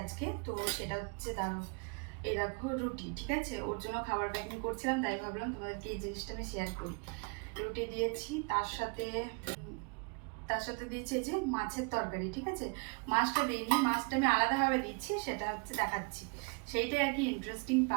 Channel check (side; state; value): left; quieter; 33.7 dB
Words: আজকে, তো সেটা হচ্ছে দাঁড়াও, এই দেখো রুটি, ঠিক আছে, ওর জন্য খাবার প্যাকিং করছিলাম, তাই ভাবলাম তোমাদেরকে এই জিনিসটা আমি শেয়ার করি। রুটি দিয়েছি, তার সাথে দিয়েছি এই যে মাছের তরকারি, ঠিক আছে। মাছটা দিইনি, মাছটা আমি আলাদাভাবে দিচ্ছি, সেটা হচ্ছে দেখাচ্ছি, সেইটাই আর কি ইন্টারেস্টিং